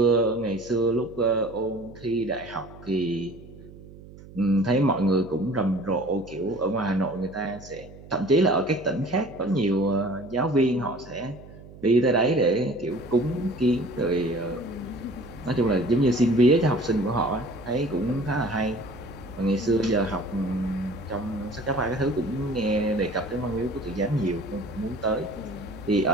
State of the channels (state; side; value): noise; right; hum, 18 dB below the sound